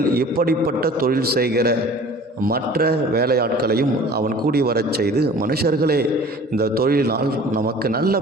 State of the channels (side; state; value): both; normal; correlation 0.46